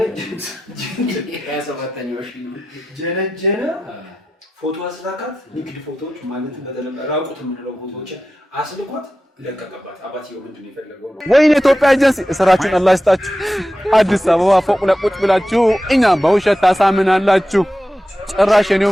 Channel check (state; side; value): normal; both; correlation 0.92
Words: ሺ ጀነጀነ ፎቶ አስላካት ንግድ ፎቶዎች ማለት በተለምዶ ራቁት የምንለው ፎቶዎች አስልኳት ለቀቀባት አባትየው ምንድነው የፈለገው ነው ወይኔ ኢትዮጵያ ኤጀንሲ ስራችሁን አላህ ይስጣችሁ አዲስ አበባ ፎቅ ላይ ቁጭ ብላችሁ እኛ በውሸት ታሳምናላችሁ ጭራሽ እኔው